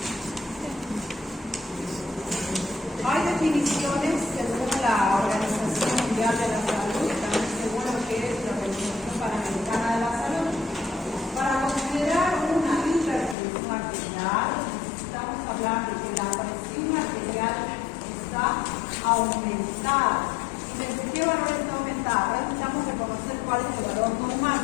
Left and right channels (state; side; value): drops out; right; at 13.4 s